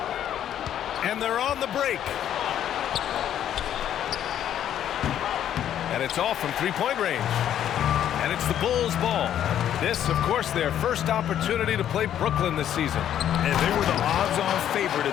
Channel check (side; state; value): right; quieter; 10.5 dB